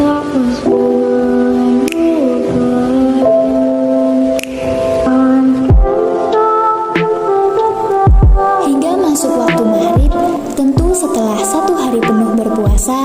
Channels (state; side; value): identical; both; correlation 1.00